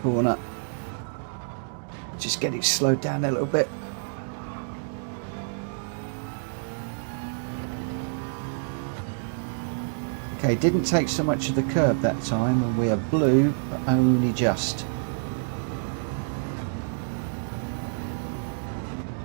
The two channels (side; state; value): left; silent; digital silence